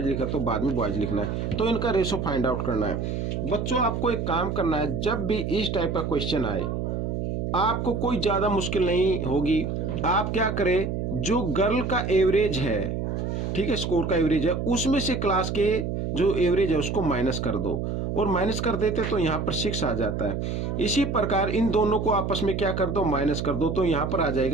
लिखा तो बाद में बॉयज लिखना है, तो इनका रेशो फाइंड आउट करना है। बच्चों आपको एक काम करना है, जब भी इस टाइप का क्वेश्चन आए आपको कोई ज्यादा मुश्किल नहीं होगी। आप क्या करें, जो गर्ल का एवरेज है, ठीक है, स्कोर का एवरेज है, उसमें से क्लास के जो एवरेज है उसको माइनस कर दो, और माइनस कर देते तो यहाँ पर 6 आ जाता है। इसी प्रकार इन दोनों को आपस में क्या कर दो, माइनस कर दो, तो यहाँ पर आ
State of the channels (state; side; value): noise; right; hum, 2 dB below the sound